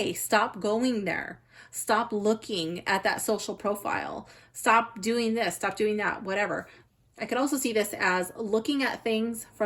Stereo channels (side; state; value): both; identical; correlation 1.00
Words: Stop going there. Stop looking at that social profile. Stop doing this. Stop doing that, whatever. I could also see this as looking at things